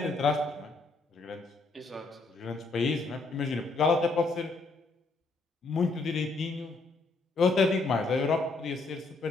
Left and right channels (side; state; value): right; quieter; 3.5 dB